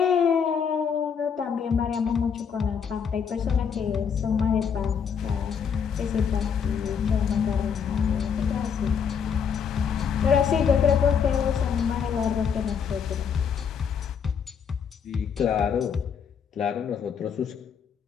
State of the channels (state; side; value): quieter; right; 7.0 dB